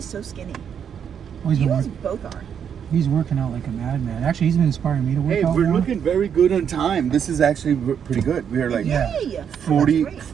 so skinny. Well, he's You been guys work- both are. He's working out like a madman. Actually, he's been inspiring me to work Hey, out we're more. looking very good on time. This is actually pretty good. We're like Yeah. Yay! 40, That's great.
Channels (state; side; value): quieter; left; 8.0 dB